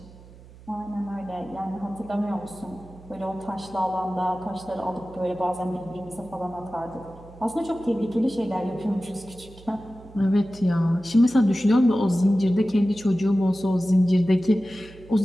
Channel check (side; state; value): right; noise; hum, 21 dB below the sound